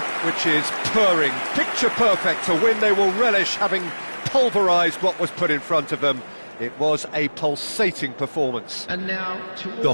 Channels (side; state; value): both; inverted; correlation -1.00